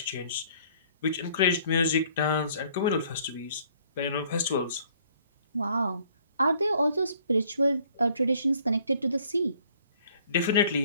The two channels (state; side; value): inverted; both; correlation -0.61